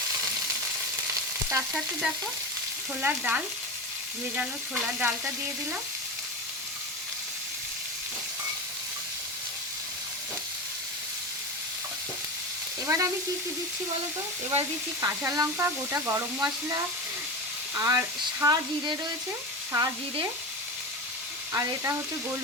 তার সাথে দেখো ছোলার ডাল, ভেজানো ছোলার ডালটা দিয়ে দিলাম। এবার আমি কি কি দিচ্ছি বলো তো, এবার দিচ্ছি কাঁচা লঙ্কা, গোটা গরম মশলা, আর জিরে রয়েছে, জিরে, আর এটা হচ্ছে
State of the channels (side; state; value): both; normal; correlation 0.23